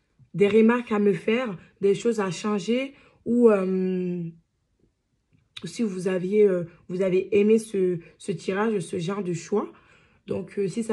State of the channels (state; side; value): identical; both; correlation 1.00